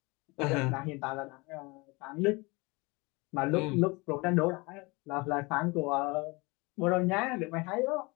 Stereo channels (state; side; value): quieter; right; 25.9 dB